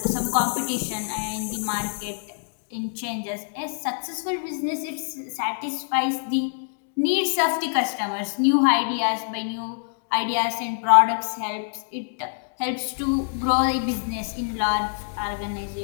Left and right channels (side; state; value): right; silent; digital silence